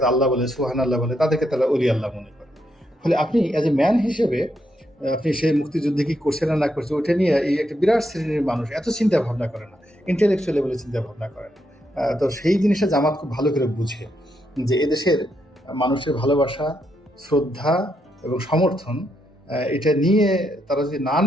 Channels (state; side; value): normal; both; correlation 0.79